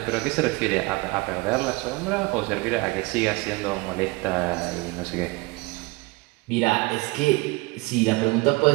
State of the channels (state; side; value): quieter; left; 24.1 dB